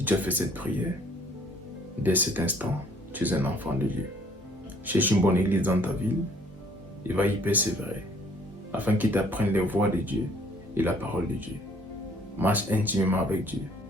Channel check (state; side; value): normal; both; correlation 0.60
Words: tu as fait cette prière, dès cet instant, tu es un enfant de Dieu. Cherche une bonne église dans ta ville et va y persévérer afin qu'il t'apprenne les voies de Dieu et la parole de Dieu. Marche intimement avec Dieu.